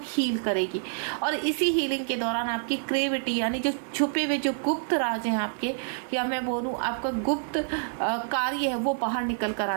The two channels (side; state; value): left; silent; digital silence